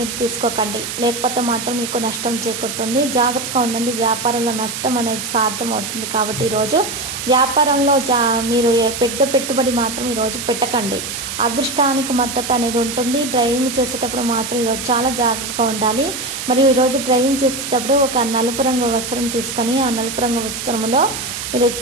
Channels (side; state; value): right; noise; hiss, 6 dB below the sound